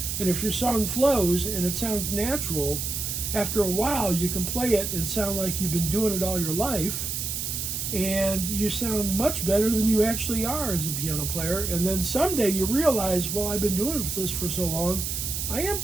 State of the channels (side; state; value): right; noise; hiss, 3 dB below the sound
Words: And if your song flows and it sounds natural, after a while you can play it and sound like you've been doing it all your life, and you sound much better than you actually are as a piano player. And then someday you realize, well, I've been doing this for so long, I am